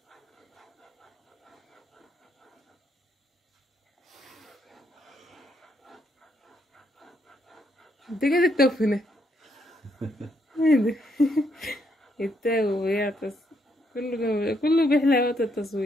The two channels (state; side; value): normal; both; correlation 0.75